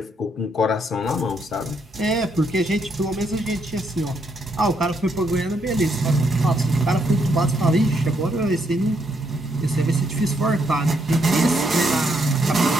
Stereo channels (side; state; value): both; normal; correlation 0.75